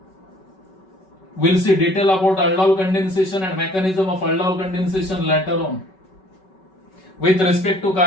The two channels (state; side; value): late; right; 5.3 ms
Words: We'll see detail about aldol condensation and mechanism of aldol condensation later on. With respect to